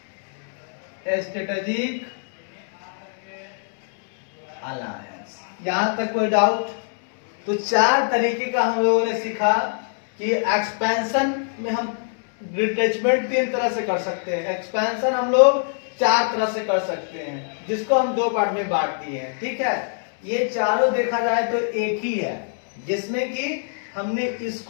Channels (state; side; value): silent; right; digital silence